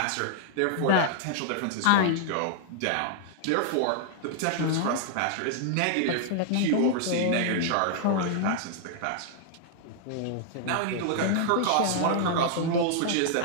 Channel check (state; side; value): different; both; correlation -0.01